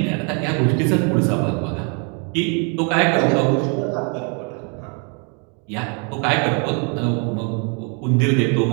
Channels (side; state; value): left; quieter; 36.5 dB